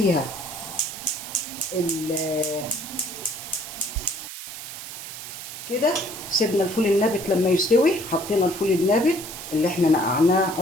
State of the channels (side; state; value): right; noise; hiss, 10 dB below the sound